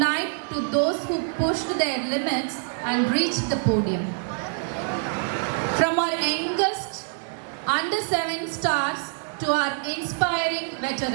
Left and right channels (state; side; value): silent; left; 61 dB below the other